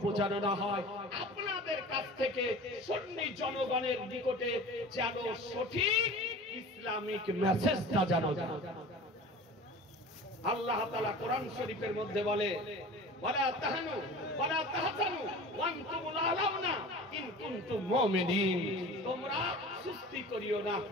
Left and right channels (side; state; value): both; normal; correlation 0.38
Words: যেন না হয়, আপনাদের কাছ থেকে সুন্নি জনগণের নিকটে যেন সঠিক ইসলামিক মেসেজটা যেন আল্লাহ তাআলা কোরআন শরীফের মধ্যে বলে, ওয়ালা তাহানু ওয়ালা তাহজানু ওয়া আনতুমুল আলাউনা ইন কুনতুম মুমিনিন। তোমরা সুস্তি করিও না,